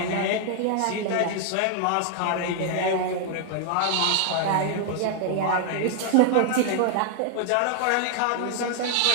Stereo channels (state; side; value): different; both; correlation 0.00